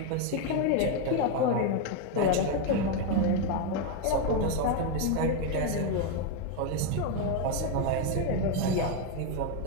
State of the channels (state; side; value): different; both; correlation 0.02